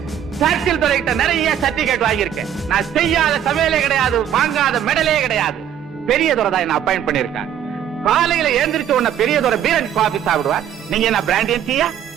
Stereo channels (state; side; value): quieter; left; 9.8 dB